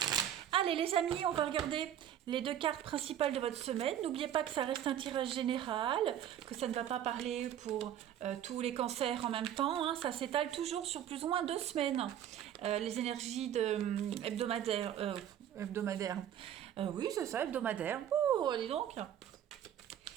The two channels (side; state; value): left; quieter; 10.5 dB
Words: Allez les amis, on va regarder les deux cartes principales de votre semaine. N'oubliez pas que ça reste un tirage général, que ça ne va pas parler pour tous les cancers en même temps. Hein. Ça s'étale toujours sur plus ou moins 2 semaines. Les énergies hebdomadaires. Oui, c'est ça, hebdomadaire. Oh, dis donc.